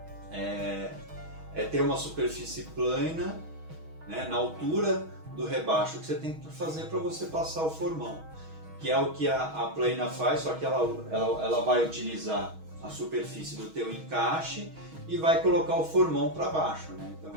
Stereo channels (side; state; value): left; late; 6.3 ms